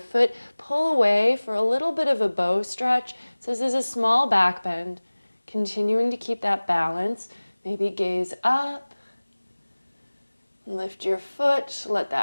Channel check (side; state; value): both; inverted; correlation -1.00